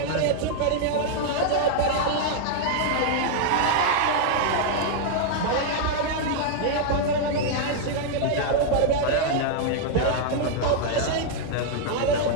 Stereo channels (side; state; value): both; different; correlation -0.01